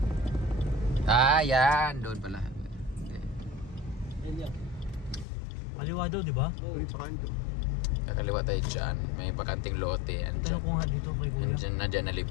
Yan. Doon pala. Kaliwa daw, di ba? Oo, pakanto. Kakaliwa tayo dyan. May bakanting lote. Tignan ko nga dito kay Kuya. Nandiyan na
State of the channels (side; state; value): right; drops out; at 5.2 s